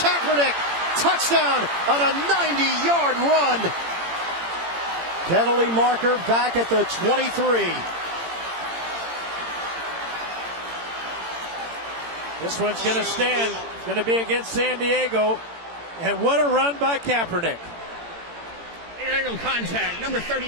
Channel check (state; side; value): late; left; 18 ms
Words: Touchdown on a 90-yard run. Penalty marker back at the 23. This one's going to stand. Going to be against San Diego. And what a run by Kaepernick. Illegal contact. Number